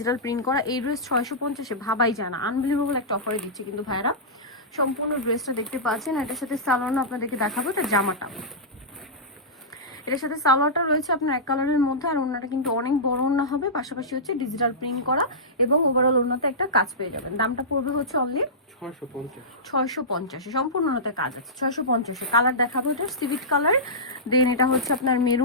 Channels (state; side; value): normal; both; correlation -0.16